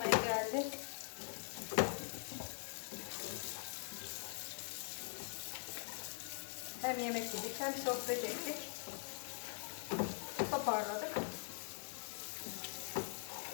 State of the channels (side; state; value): right; silent; digital silence